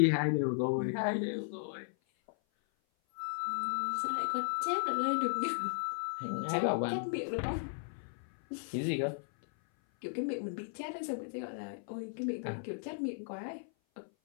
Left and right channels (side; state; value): right; silent; 54 dB below the other